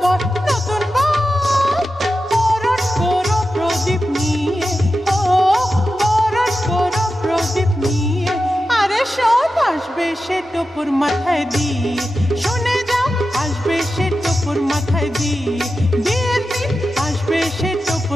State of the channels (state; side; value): normal; both; correlation 0.91